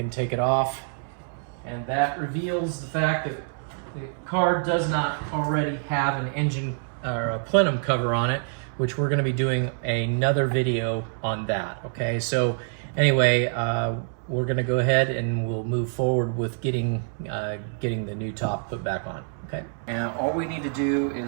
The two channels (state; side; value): silent; left; 61 dB below the other